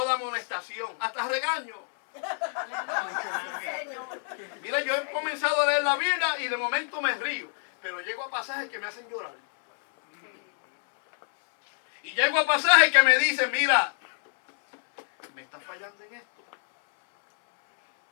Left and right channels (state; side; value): silent; right; 60 dB below the other